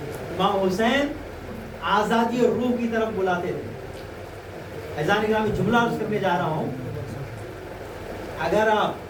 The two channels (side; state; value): both; identical; correlation 1.00